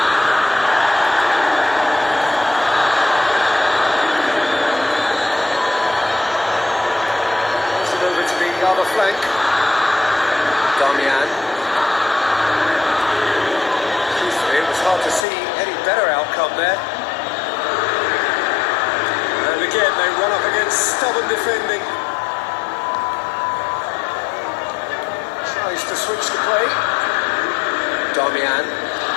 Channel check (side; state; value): right; drops out; at 15.2 s